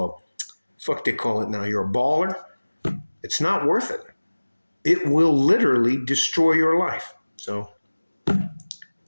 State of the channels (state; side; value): inverted; both; correlation -1.00